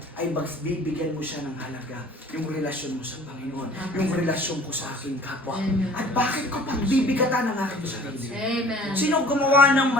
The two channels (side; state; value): both; normal; correlation 0.49